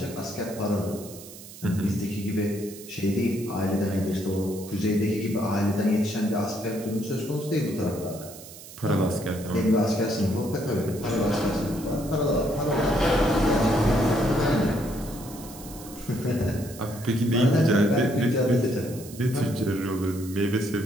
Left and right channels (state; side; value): noise; right; hiss, 16 dB below the sound